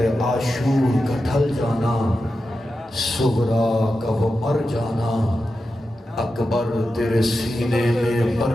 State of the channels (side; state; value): both; normal; correlation 0.90